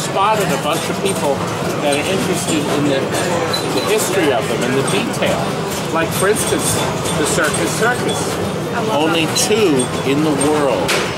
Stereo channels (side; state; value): both; identical; correlation 1.00